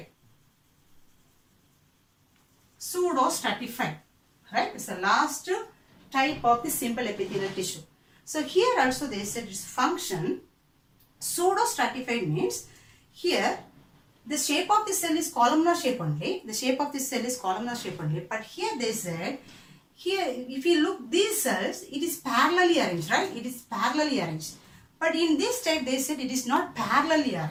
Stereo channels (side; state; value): both; identical; correlation 1.00